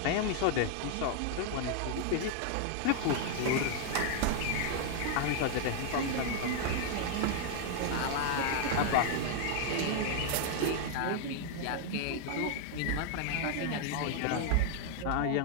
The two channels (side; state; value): both; different; correlation 0.00